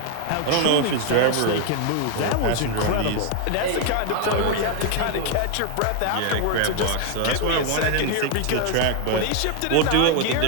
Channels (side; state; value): both; different; correlation 0.01